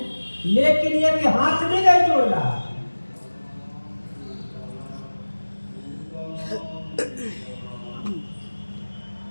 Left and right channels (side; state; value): both; inverted; correlation -1.00